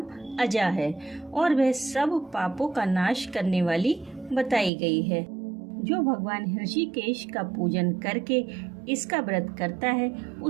अजा है और वह सब पापों का नाश करने वाली बताई गई है। जो भगवान ऋषिकेश का पूजन करके इसका व्रत करता है,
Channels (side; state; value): left; drops out; at 4.7 s